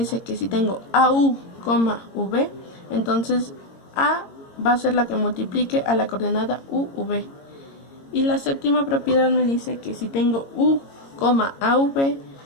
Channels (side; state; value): right; late; 22 ms